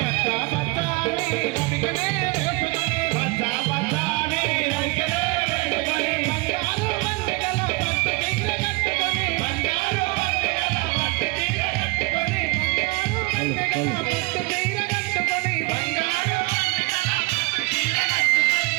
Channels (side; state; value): left; quieter; 25.8 dB